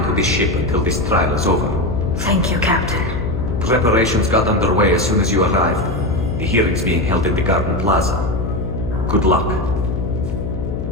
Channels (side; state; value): left; noise; hum, 4 dB below the sound